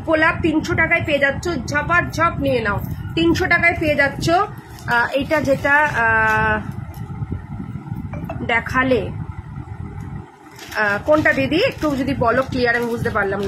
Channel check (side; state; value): both; identical; correlation 1.00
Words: গোলাপ 300 টাকায় পেয়ে যাচ্ছ, ঝপার ঝপ নিয়ে নাও, 300 টাকায় পেয়ে যাচ্ছ। এইটা যেটা দেখালে কোনটা দিদি একটু যদি বলো ক্লিয়ার, আমি বুঝতে পারলাম